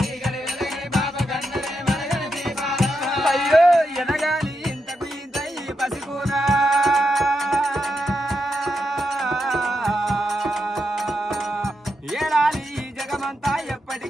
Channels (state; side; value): normal; both; correlation 0.84